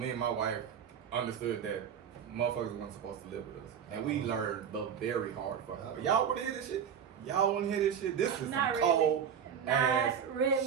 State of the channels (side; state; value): left; quieter; 8.0 dB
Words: and my wife understood that motherfuckers weren't supposed to live with us. And we learned the very hard fucking way. Y'all wanna hear this shit? Y'all wanna hear this shit? This is some Not really. cold ass Not